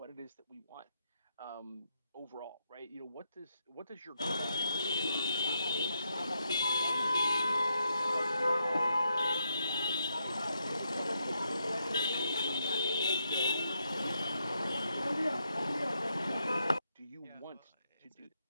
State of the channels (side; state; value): both; inverted; correlation -0.81